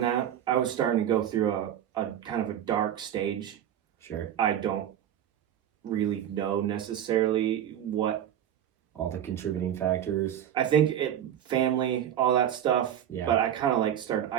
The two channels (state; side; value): quieter; left; 10.4 dB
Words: that. I was starting to go through a kind of a dark stage. Sure. I don't really know necessarily what all the contributing factors. I think family, all that stuff. Yeah. But I kind of started